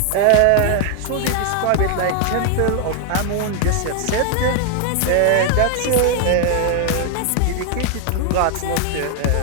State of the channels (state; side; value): different; both; correlation 0.00